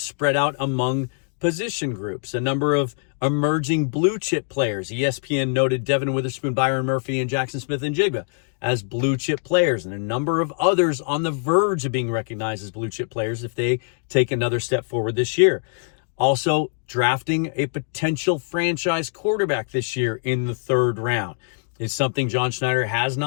out among position groups. A number of emerging blue chip players. ESPN noted Devin Witherspoon, Byron Murphy, and Jackson Smith-Njigba as blue chip players. And a number of others on the verge of being recognized as blue chip players if they take another step forward this year. Also, drafting a potential franchise quarterback this year in the 3rd round is something John Schneider has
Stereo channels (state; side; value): silent; right; 63 dB below the other